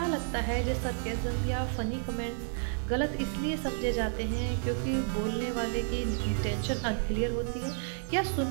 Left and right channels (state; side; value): silent; left; digital silence